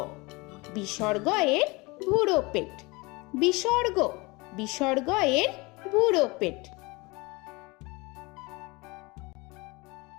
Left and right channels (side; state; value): right; quieter; 25.1 dB